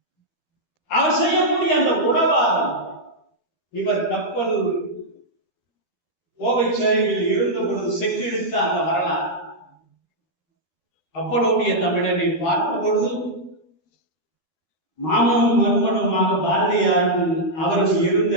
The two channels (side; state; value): right; late; 12 ms